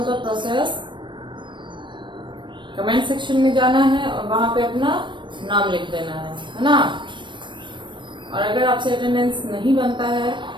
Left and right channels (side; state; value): left; late; 0.23 ms